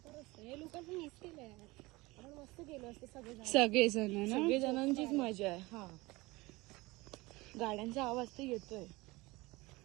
हे लोकांचं मिस केलंय. आपण मस्त गेलो असतो सगळेजण. सगळेजण ना सगळे जणांचीच मजा आहे. हा, गाड्यांचा आवाज तर येतोय.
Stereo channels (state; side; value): quieter; left; 22.0 dB